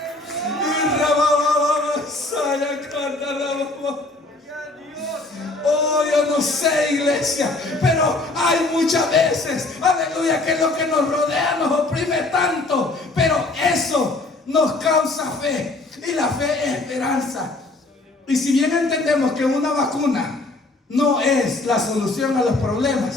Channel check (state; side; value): quieter; right; 3.0 dB